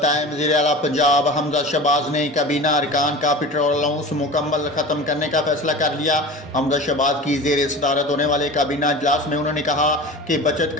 वज़ीर आला पंजाब हमजा शहबाज ने काबीना अरकान का पेट्रोल अलाउंस मुकम्मल ख़त्म करने का फैसला कर लिया। हमजा शहबाज की ज़ेर सदारत होने वाले काबीना इजलास में उन्होंने कहा कि बचत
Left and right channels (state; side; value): normal; both; correlation 0.34